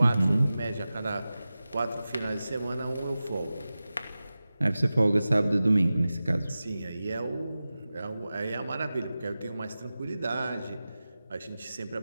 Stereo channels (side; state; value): both; inverted; correlation -0.95